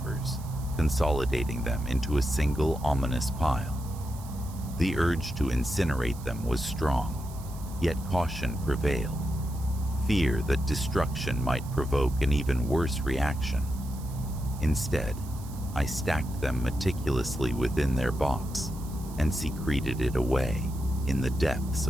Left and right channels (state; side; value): noise; right; hiss, 19 dB below the sound